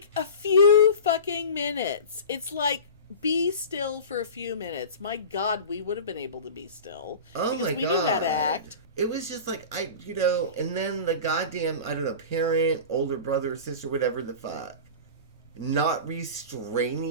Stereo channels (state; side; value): inverted; both; correlation -0.33